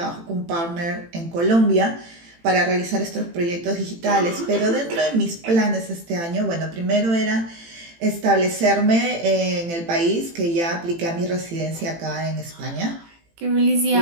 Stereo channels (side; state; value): left; late; 18 ms